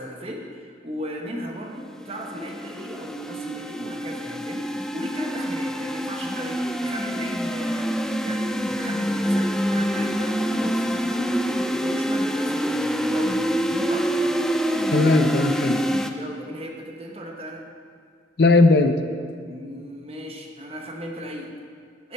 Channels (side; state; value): both; normal; correlation 0.75